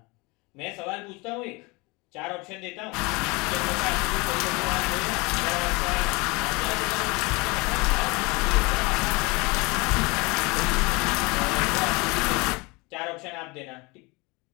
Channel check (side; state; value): right; quieter; 26.1 dB